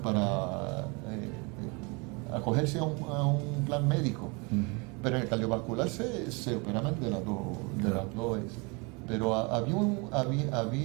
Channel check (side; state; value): left; quieter; 29.8 dB